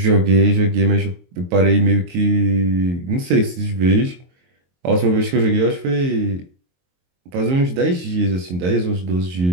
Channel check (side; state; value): left; late; 22 ms